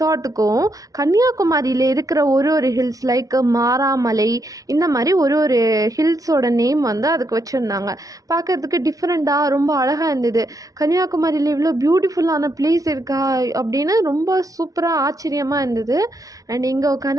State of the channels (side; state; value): left; late; 0.17 ms